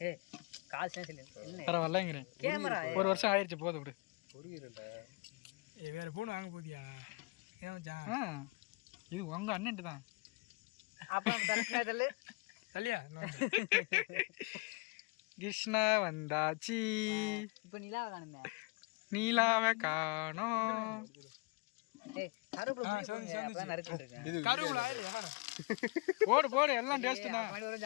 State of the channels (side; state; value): right; quieter; 28.4 dB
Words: பரவாயில்லங்கிறேன். ஒரு வருஷம் ஆயிடுச்சு போதும் விடு. வேற ஃபோன் வாங்க போதியா? ஏன் மச்சான்? இது உங்க அண்ணன்ட்டு தான். இல்லையா? கிருஷ்ணா வந்தாச்சி. நீலாவை காணோம். கருவுல இல்லையா? போடு போடு எல்லாம் டேஸ்ட் தான்.